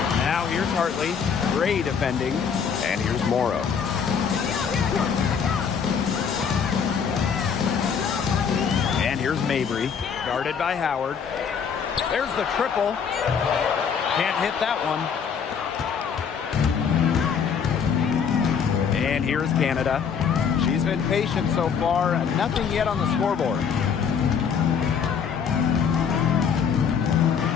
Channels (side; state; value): right; quieter; 6.8 dB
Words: Now here's Hartley. Gray defending. And here's Morrow. And here's Mabry. Guarded by Howard. There's the triple. Can't hit that one. And here's Canada. She's been patient so far. Nothing yet on the scoreboard.